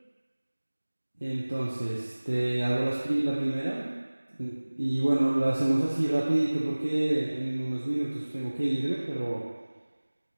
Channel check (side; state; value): both; inverted; correlation -1.00